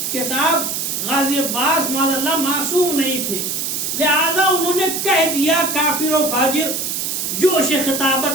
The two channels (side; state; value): right; noise; hiss, 2 dB below the sound